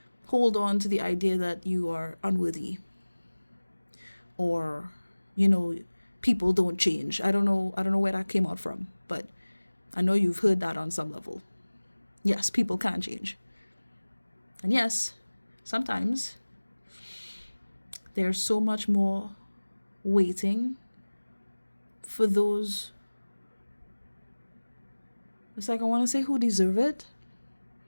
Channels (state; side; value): inverted; both; correlation -1.00